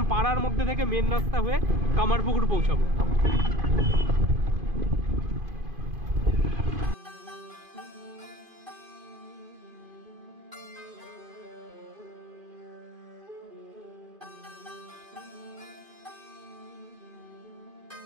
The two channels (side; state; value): left; late; 2.5 ms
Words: পাড়ার মধ্যে থেকে মেন রাস্তা হয়ে কামারপুকুর পৌঁছাবো।